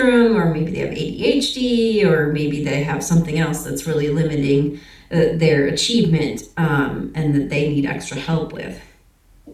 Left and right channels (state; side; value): identical; both; correlation 1.00